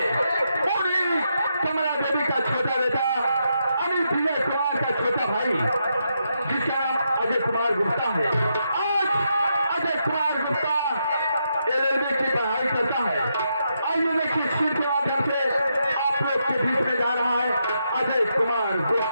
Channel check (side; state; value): both; inverted; correlation -0.82